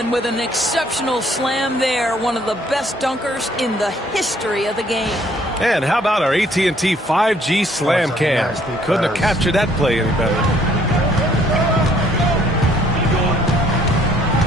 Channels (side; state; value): both; normal; correlation 0.63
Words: with an exceptional slam there. One of the best dunkers in the history of the game. And how about our AT&T 5G slam cam? Couldn't have captured that play any better.